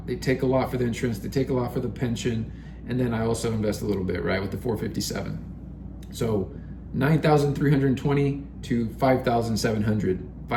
They take a lot for the insurance. They take a lot for the pension. And then I also invest a little bit, right? With the 457. So 9,320 to 5,700.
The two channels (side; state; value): both; identical; correlation 1.00